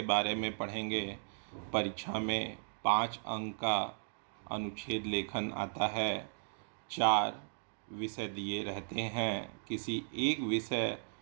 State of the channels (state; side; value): silent; left; digital silence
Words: बारे में पढ़ेंगे। परीक्षा में 5 अंक का अनुच्छेद लेखन आता है। 4 विषय दिए रहते हैं। किसी एक विषय